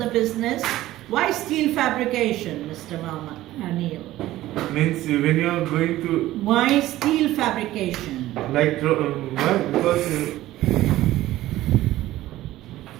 business. Why steel fabrication, Mr. Mama Neil? Means when you are going to Why steel fabrication? like why? Because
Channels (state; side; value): quieter; left; 15.5 dB